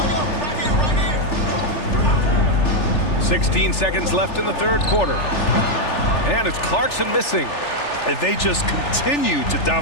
16 seconds left in the third quarter. And it's Clarkson missing. And they just continue to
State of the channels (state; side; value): late; right; 3.4 ms